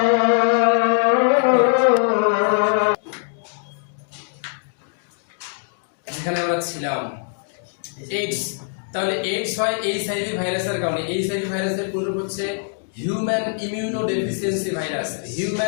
যেখানে আমরা ছিলাম এইডস। তাহলে এইডস হয় এইচআইভি ভাইরাসের কারণে। এইচআইভি ভাইরাসের পুরো হচ্ছে human immuno deficiency virus.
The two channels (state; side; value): silent; right; digital silence